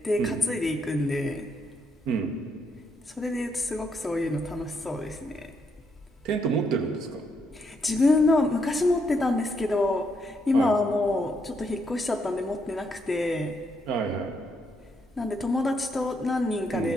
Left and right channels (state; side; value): normal; both; correlation 0.76